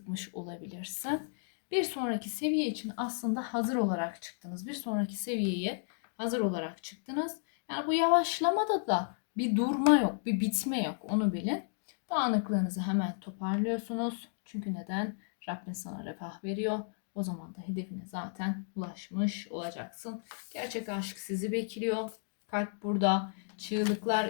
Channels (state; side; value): silent; right; digital silence